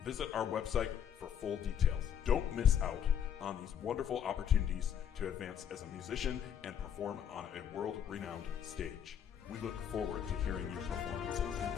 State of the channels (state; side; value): quieter; right; 8.8 dB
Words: Visit our website for full details. Don't miss out on these wonderful opportunities to advance as a musician and perform on a world-renowned stage. We look forward to hearing your